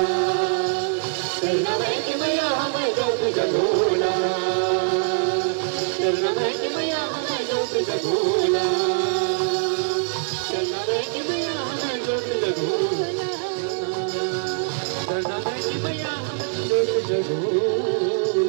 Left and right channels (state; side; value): silent; left; digital silence